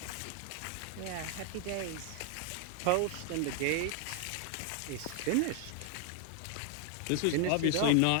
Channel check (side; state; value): both; different; correlation 0.00